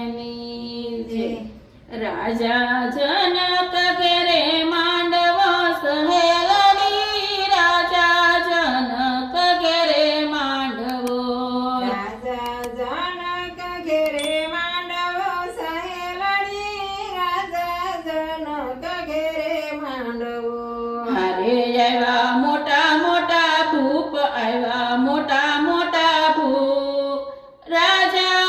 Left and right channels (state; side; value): identical; both; correlation 1.00